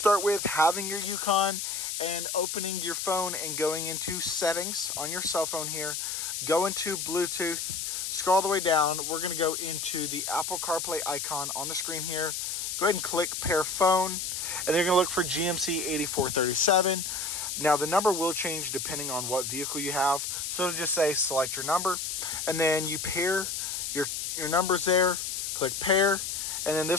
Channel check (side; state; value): left; noise; hiss, 3 dB below the sound